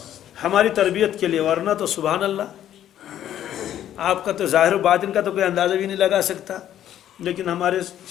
ہماری تربیت کے لیے، ورنہ تو سبحان اللہ آپ کا تو ظاہر و باطن کا تو کوئی اندازہ بھی نہیں لگا سکتا، لیکن ہمارے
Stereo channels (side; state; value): right; quieter; 11.3 dB